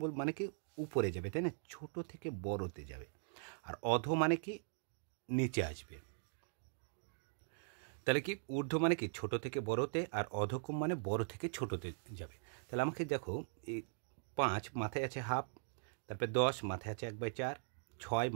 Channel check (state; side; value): silent; left; digital silence